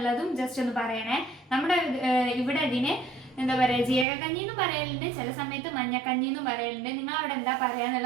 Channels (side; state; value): left; drops out; at 4.0 s